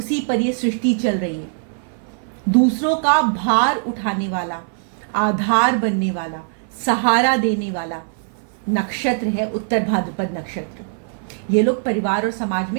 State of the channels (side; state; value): left; silent; 55 dB below the other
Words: पर ये सृष्टि चल रही है। दूसरों का भार उठाने वाला, आधार बनने वाला, सहारा देने वाला नक्षत्र है उत्तर भाद्रपद नक्षत्र। ये लोग परिवार और समाज